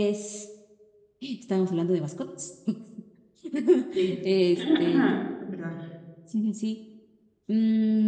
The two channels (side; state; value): both; identical; correlation 1.00